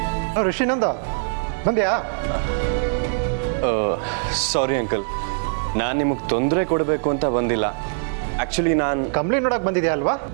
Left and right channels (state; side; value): silent; left; digital silence